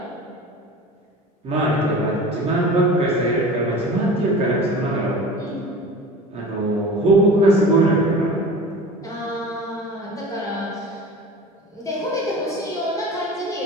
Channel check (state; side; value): normal; both; correlation 0.37